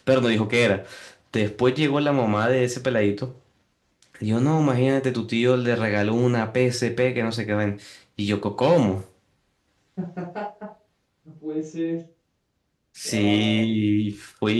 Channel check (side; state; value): both; identical; correlation 1.00